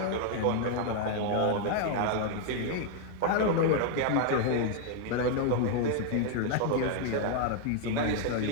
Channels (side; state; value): both; different; correlation 0.00